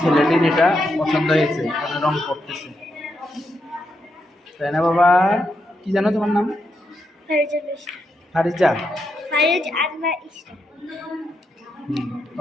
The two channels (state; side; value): normal; both; correlation 0.82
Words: ছেলেটির এটা পছন্দ হয়েছে, রং করতেছে, তাই না বাবা? কি জানো তোমার নাম? ফারিজা।